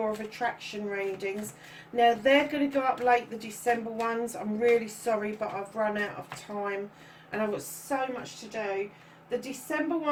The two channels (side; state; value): both; identical; correlation 1.00